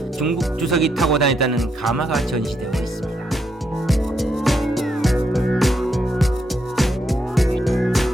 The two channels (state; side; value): normal; both; correlation 0.78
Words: 중국 주석이 타고 다녔다는 가마가 전시되어 있습니다.